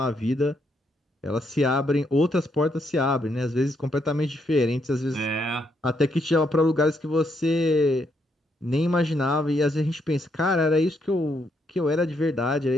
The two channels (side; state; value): both; normal; correlation 0.76